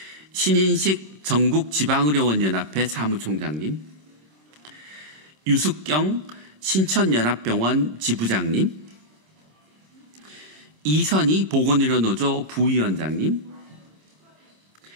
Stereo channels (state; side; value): late; left; 25 ms